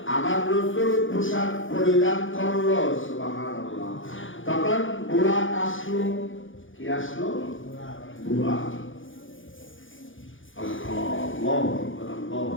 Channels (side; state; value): right; late; 0.57 ms